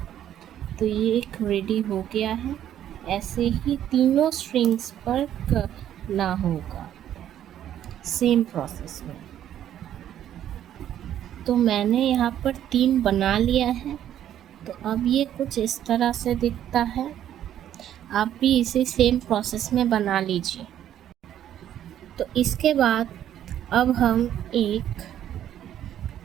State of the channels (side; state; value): left; quieter; 11.0 dB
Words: तो ये एक रेडी हो गया है। ऐसे ही तीनों स्ट्रिंग्स पर करना होगा, सेम प्रोसेस में। तो मैंने यहाँ पर 3 बना लिया है। तो अब ये कुछ इस तरह से दिखता है। आप भी इसे सेम प्रोसेस में बना लीजिए। तो इसके बाद अब हम एक